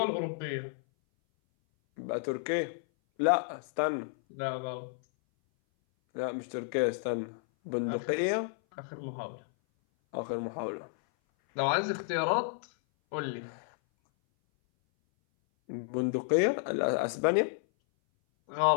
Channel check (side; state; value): right; silent; 57 dB below the other